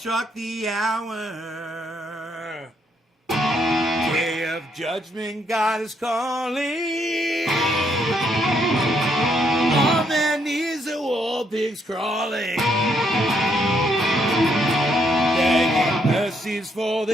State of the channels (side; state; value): both; normal; correlation 0.73